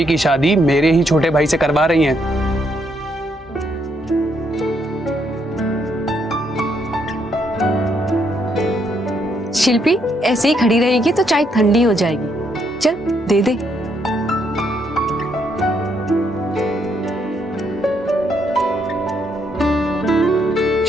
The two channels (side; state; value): both; normal; correlation 0.74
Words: की शादी मेरे ही छोटे भाई से करवा रही हैं। शिल्पी ऐसे ही खड़ी रहेगी तो चाय ठंडी हो जाएगी। चल दे दे।